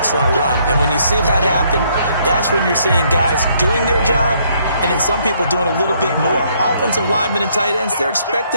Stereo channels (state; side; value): inverted; both; correlation -0.68